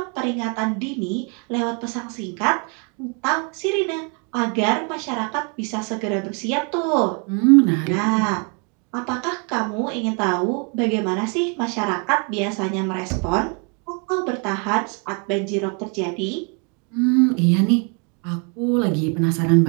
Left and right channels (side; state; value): left; quieter; 35.9 dB